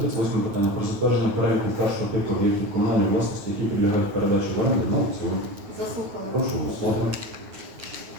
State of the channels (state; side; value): late; left; 9.3 ms